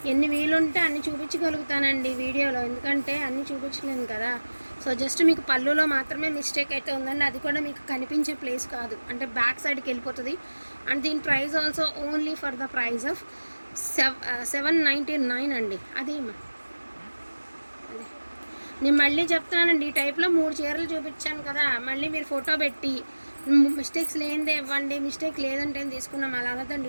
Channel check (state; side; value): inverted; both; correlation -1.00